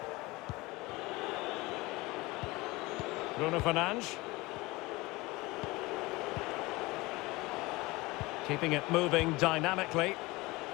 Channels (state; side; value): quieter; right; 21.8 dB